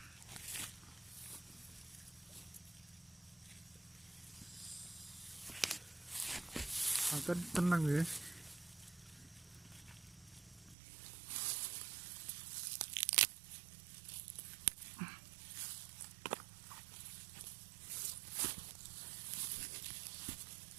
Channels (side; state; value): left; drops out; at 10.8 s